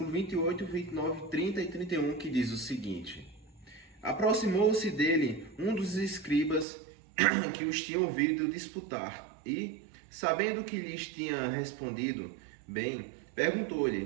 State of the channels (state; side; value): drops out; left; at 6.7 s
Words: 28, 29, 30 e 31, que diz o seguinte: Aproximou-se dele um dos escribas que os tinham ouvido disputar e, sabendo que lhes tinha respondido bem,